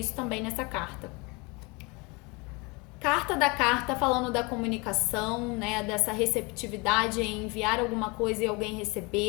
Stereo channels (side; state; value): right; quieter; 27.7 dB